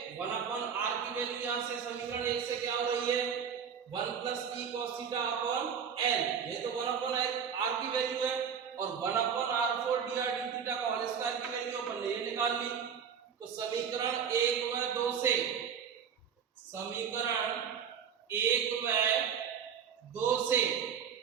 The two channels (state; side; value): quieter; left; 7.4 dB